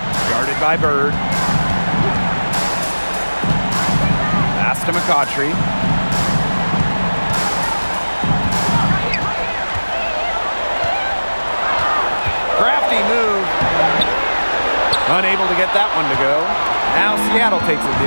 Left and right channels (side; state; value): both; inverted; correlation -1.00